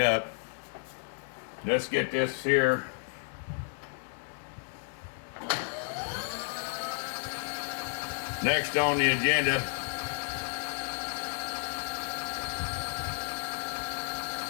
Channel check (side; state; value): right; silent; digital silence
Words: up. Let's get this here. Next on the agenda.